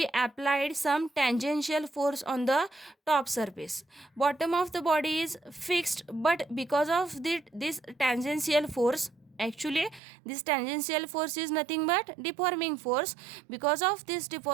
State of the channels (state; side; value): drops out; left; at 10.0 s